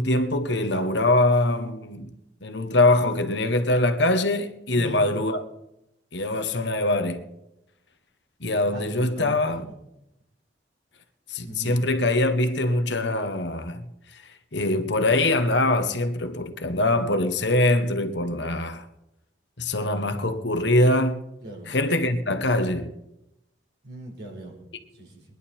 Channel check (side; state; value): both; normal; correlation 0.17